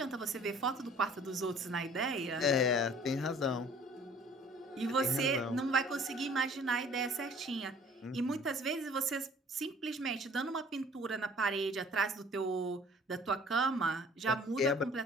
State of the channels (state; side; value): normal; both; correlation 0.52